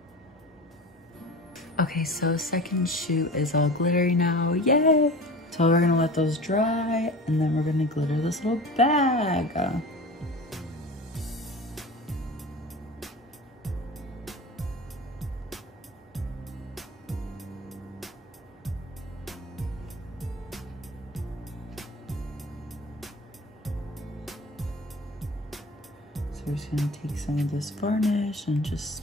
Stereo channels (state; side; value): normal; both; correlation 0.36